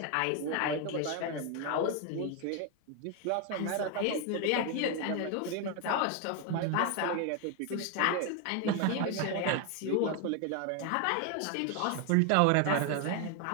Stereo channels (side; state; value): both; different; correlation 0.01